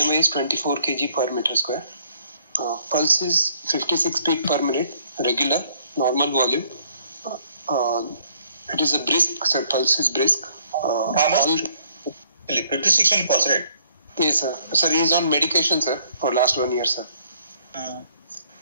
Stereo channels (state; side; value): inverted; both; correlation -0.64